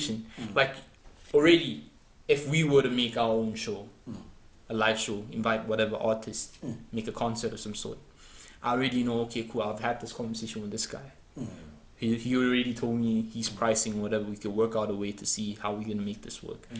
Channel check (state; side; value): identical; both; correlation 1.00